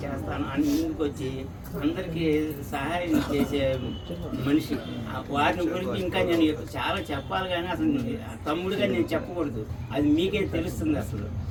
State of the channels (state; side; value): identical; both; correlation 1.00